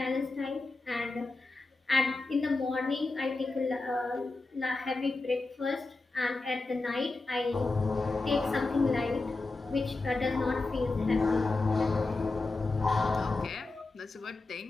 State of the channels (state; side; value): quieter; right; 3.4 dB